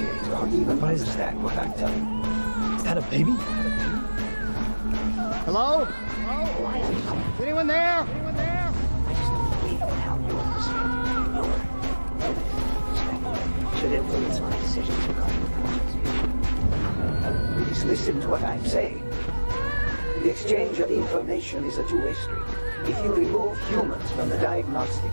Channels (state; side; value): inverted; both; correlation -1.00